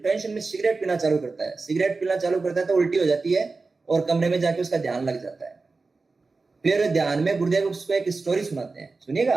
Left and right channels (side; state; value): left; quieter; 3.9 dB